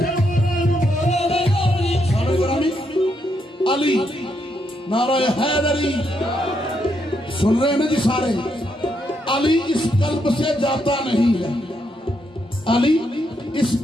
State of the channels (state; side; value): normal; both; correlation 0.78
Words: मौला नू मौला न जानी सारे ग्रामी अली नारा हैदरी सुन रहे हैं ना जी सारे अली इस कल्ब से जाता नहीं है अली इस